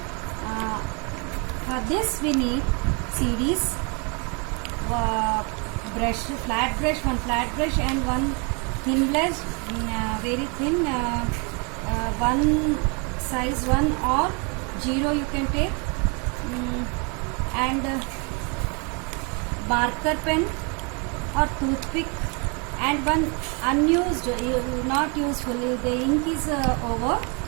For this we need CDs, brush, flat brush, one flat brush and one thin brush, very thin, one size 1 or 0 you can take, and marker pen or toothpick, and one unused, not useful, the ink is over.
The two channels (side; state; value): left; quieter; 33.6 dB